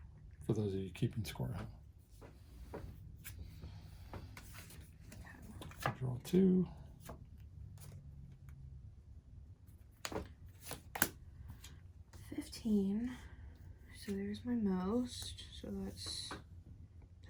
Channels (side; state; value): both; identical; correlation 1.00